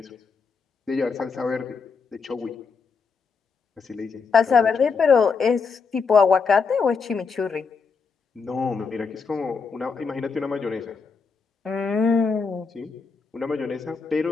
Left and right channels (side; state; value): right; quieter; 5.2 dB